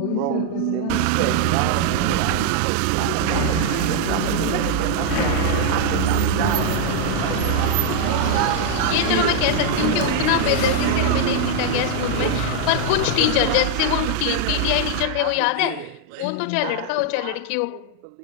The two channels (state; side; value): different; both; correlation 0.00